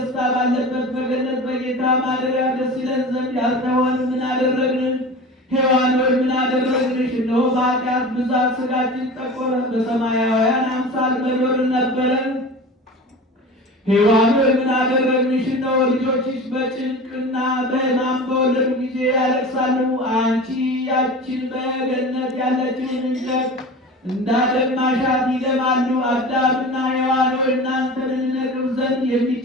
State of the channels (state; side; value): normal; both; correlation 0.34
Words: ባለበት በገነት በጌታ ማደሪያ ደስ ይለን ዘንድ ያልተሆን ምን አደረግን? ሔዋን ሆይ ምን አደረግንሽ? እነሆ በኃጢአት ብዛት ሥጋችን ጠቆረ፣ በሰማያውያን አምሳል በኖርን ነበረን። ሔዋን ሆይ ምን አደረግንሽ? እነሆ ልጆችሽ በጭንቅና በሕማም በወለዱ ጊዜ ያለቅሳሉ። አንቺ ያችን በገነት ያለችውን እንጨት እንዳደማሻት ይደማሉ። አዳምና ሔዋን ሆይ እናንተን እንነቅፍ ዘንድ